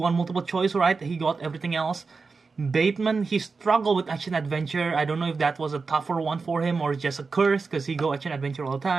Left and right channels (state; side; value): quieter; left; 4.5 dB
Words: multiple choice, right? He got everything else. Bateman, he struggled with action adventure. I don't know if that was a tougher one for him or just a curse because he go action adventure all the